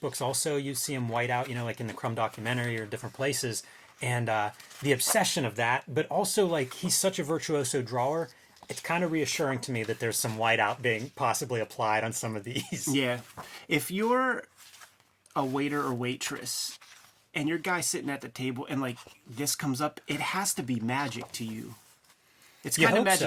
also, you see him white out, like in the Crumb documentary or different places, and the obsession of that, but also like he's such a virtuoso drawer, it's kind of reassuring to me that there's some whiteout being possibly applied on some of these. Yeah. If you're a waiter or waitress and your guy's sitting at the table and like this comes up, it has to be magic to you. It's kind of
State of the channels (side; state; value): both; identical; correlation 1.00